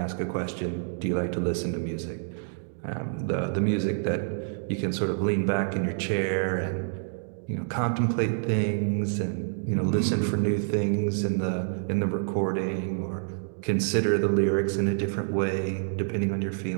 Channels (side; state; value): left; silent; digital silence